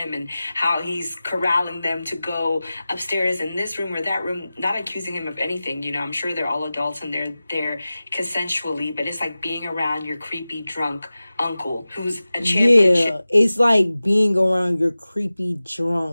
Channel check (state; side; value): inverted; both; correlation -0.96